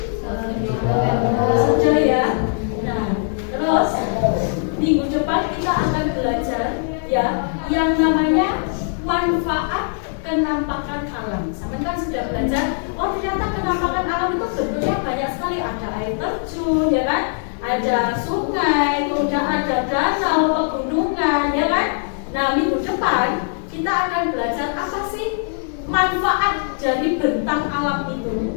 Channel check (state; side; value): silent; right; 58 dB below the other